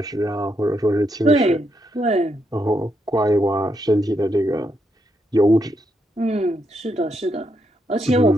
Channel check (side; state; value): both; normal; correlation 0.80